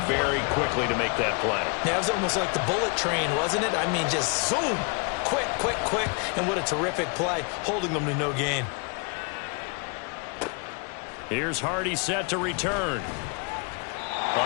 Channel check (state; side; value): quieter; right; 35.0 dB